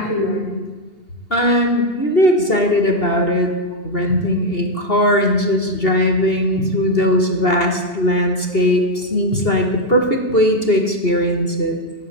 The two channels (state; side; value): late; right; 2.8 ms